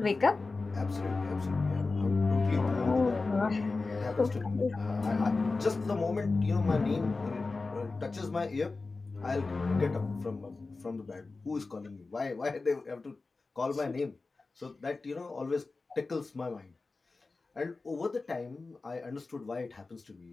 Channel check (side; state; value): right; quieter; 3.8 dB